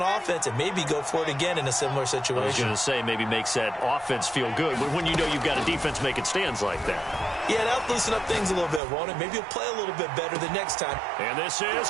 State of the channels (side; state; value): left; drops out; at 8.8 s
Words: offense and maybe go for it again in a similar situation. I was going to say maybe makes that offense feel good when you know you've got a defense making stands like that. Yeah, that'll loosen up things a little bit, won't it? Maybe he'll play a little bit better the next time. And this is